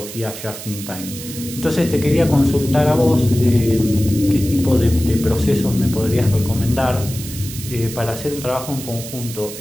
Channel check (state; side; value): noise; right; hiss, 11 dB below the sound